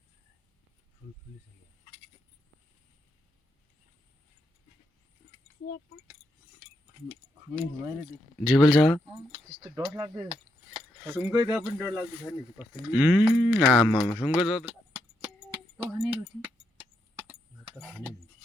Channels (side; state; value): both; normal; correlation 0.80